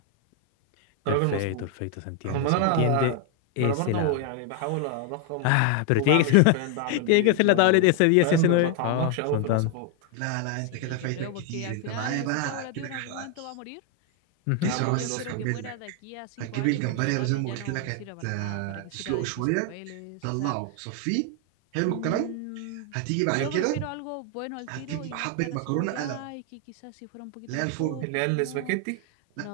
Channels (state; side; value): different; both; correlation 0.00